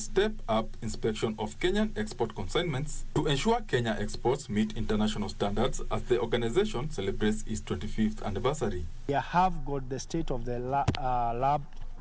up inspection of Kenyan export consignments to ensure Kenya exports meet international standards as the organization celebrates its 25th anniversary. We have got the state-of-the-art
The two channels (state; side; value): identical; both; correlation 1.00